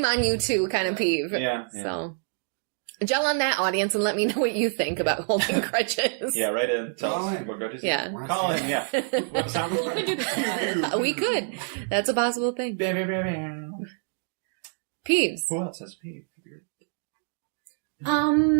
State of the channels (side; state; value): left; silent; digital silence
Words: on you too kind of peeve. yeah. So, gel on that, audience, and let me know what you think about holding grudges. Yeah, right in. Tell Call us in. what grudges you Yeah. have. Once Call in, again. yeah. We have a soundboard. Pew, pew. We could. That's a possible thing. Bam, bam, bam, bam. Peeves. Who else has peeve?